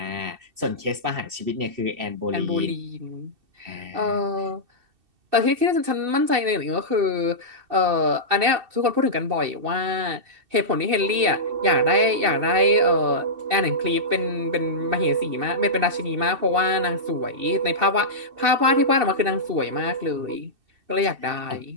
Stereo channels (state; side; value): late; left; 2.7 ms